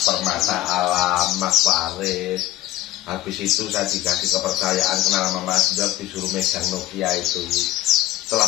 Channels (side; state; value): right; quieter; 15.0 dB